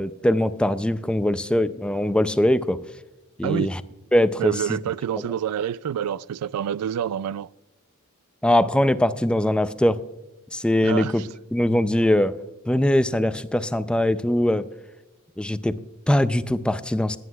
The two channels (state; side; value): normal; both; correlation 0.82